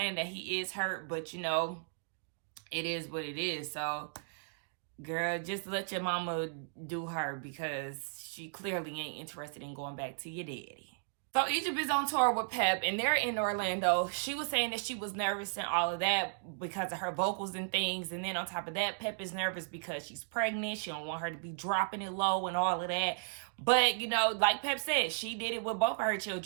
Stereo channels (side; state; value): left; silent; digital silence